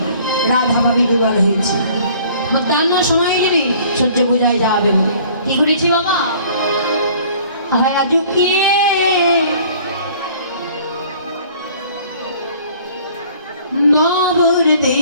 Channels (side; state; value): both; inverted; correlation -0.54